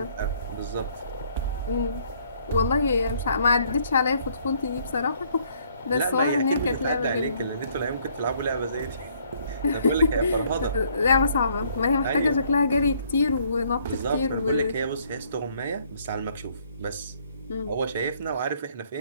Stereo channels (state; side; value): inverted; both; correlation -0.65